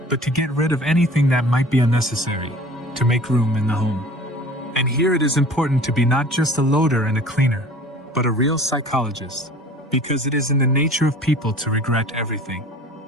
but to get rid of anything that might be unnecessary, to make room in the home. And here it is important to be not just a loader and a cleaner, but a real psychologist, because it is in the nature of people to regret everything.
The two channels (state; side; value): normal; both; correlation 0.45